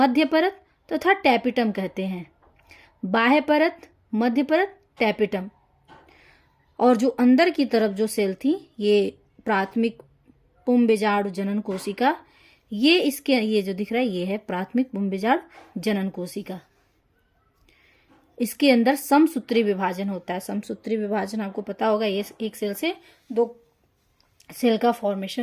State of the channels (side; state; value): both; identical; correlation 1.00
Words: परत तथा टैपिटम कहते हैं। बाह्य परत, मध्य परत, टैपिटम। और जो अंदर की तरफ जो सेल थी ये प्राथमिक पुंबीजाणु जनन कोशिका, ये जो दिख रहा है ये है प्राथमिक पुंबीजाणु जनन कोशिका। इसके अंदर समसूत्री विभाजन होता है। समसूत्री विभाजन आपको पता होगा, ये एक सेल से 2 सेल का